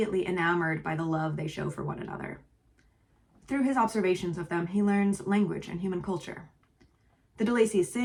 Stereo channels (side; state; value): both; identical; correlation 1.00